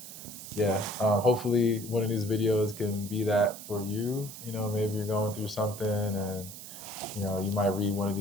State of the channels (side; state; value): right; noise; hiss, 12 dB below the sound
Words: yeah, hopefully one of these videos can be that for you. Maybe you're going through something and you might read one of